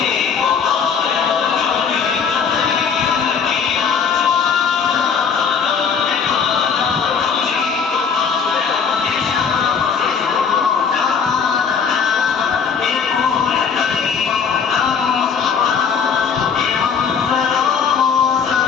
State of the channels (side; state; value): right; quieter; 6.4 dB